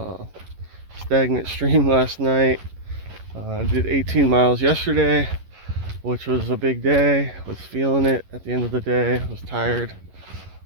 stagnant stream last night. Did 18 miles yesterday, which was a big day. Was feeling it at the end of the day. Was tired.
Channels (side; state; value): left; late; 11 ms